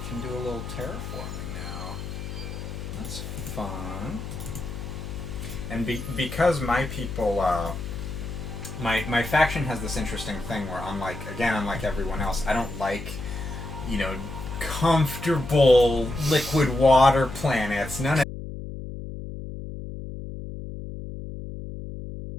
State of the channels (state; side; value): noise; left; hum, 8 dB below the sound